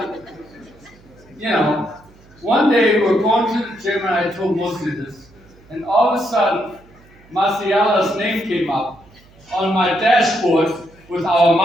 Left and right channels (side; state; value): right; noise; hum, 27 dB below the sound